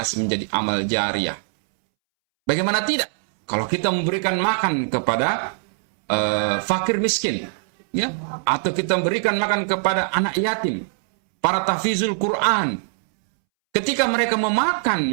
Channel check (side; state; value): left; silent; 64 dB below the other